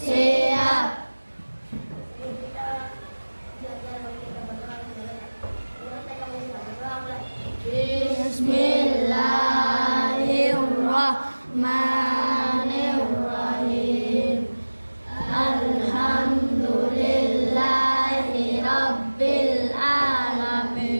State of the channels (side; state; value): both; inverted; correlation -1.00